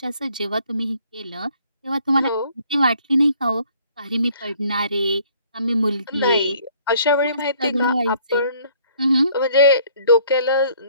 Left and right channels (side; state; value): both; inverted; correlation -0.60